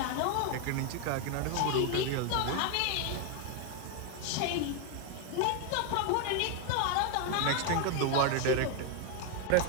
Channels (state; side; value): different; both; correlation 0.01